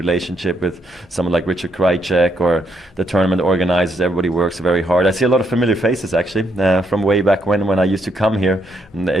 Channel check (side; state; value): both; normal; correlation 0.76